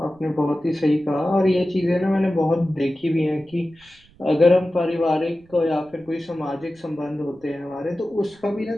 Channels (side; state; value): right; noise; rumble, 29 dB below the sound